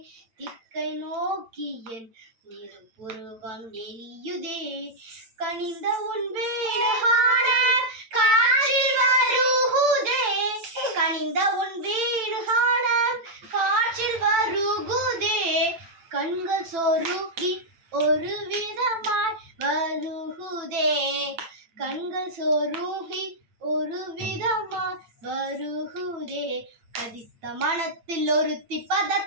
திக்கை நோக்கிய நெருப்புருவம் எரியுதே கனிந்த உன் வீடுகாண காற்றில் வருகுதே கனிந்த உன் வீடுகாண காற்றில் வருகுதே கண்கள் சொருகி ஒரு விதமாய் வருகுதே கண்கள் சொருகி ஒரு விதமாய் வருகுதே கதித்த மனத்தில் ஒருத்தி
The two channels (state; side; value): late; left; 8.9 ms